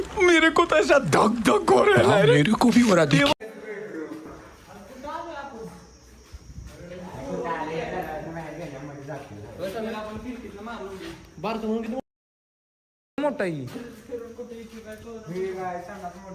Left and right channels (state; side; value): identical; both; correlation 1.00